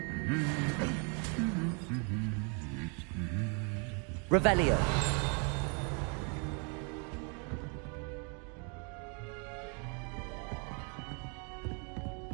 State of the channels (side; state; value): left; quieter; 37.2 dB